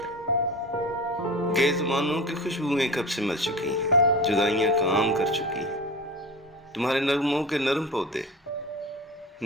گئے زمانوں کی خوشبوئیں کب سے مر چکی ہیں، جدائیاں کام کر چکی ہیں، تمہارے نغموں کے نرم پودے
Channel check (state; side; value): normal; both; correlation 0.31